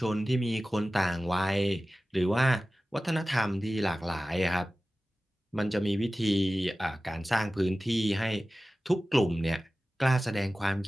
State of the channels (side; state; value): both; normal; correlation 0.96